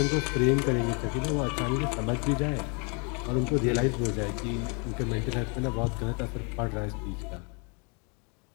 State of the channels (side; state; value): right; quieter; 34.7 dB